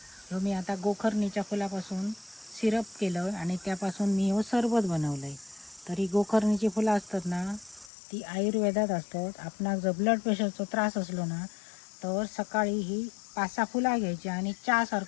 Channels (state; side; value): drops out; right; at 7.9 s